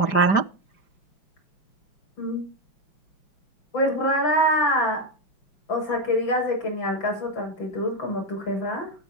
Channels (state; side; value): late; right; 5.0 ms